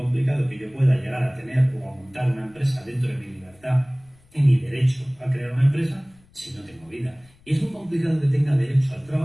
que yo pueda llegar a tener o a montar una empresa dentro de mi libertad y mi derecho a crear una empresa si no tengo vida. Y es muy complicado que tenga derecho al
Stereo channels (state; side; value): noise; left; rumble, 29 dB below the sound